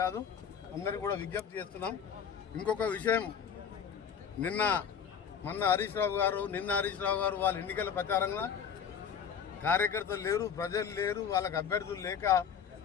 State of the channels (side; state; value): right; quieter; 7.5 dB